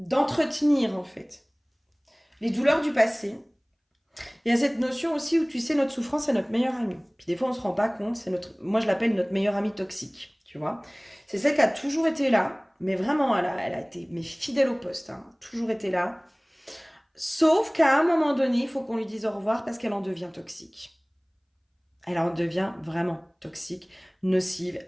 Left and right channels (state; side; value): identical; both; correlation 1.00